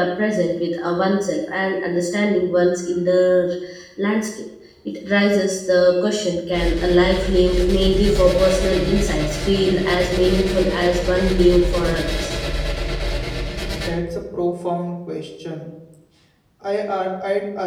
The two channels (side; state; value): both; identical; correlation 1.00